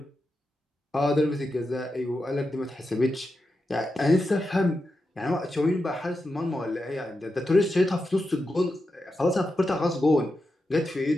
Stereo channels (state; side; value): normal; both; correlation 0.88